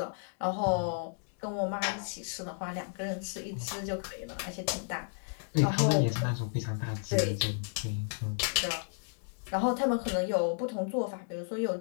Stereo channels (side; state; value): right; silent; digital silence